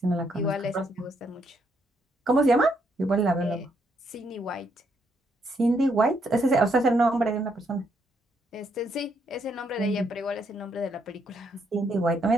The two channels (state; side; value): normal; both; correlation 0.74